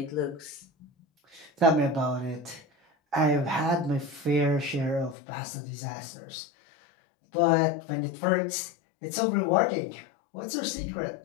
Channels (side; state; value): right; drops out; at 5.2 s